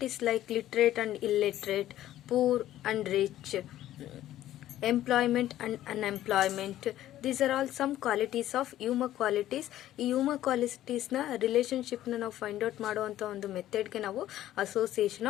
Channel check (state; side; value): quieter; right; 13.3 dB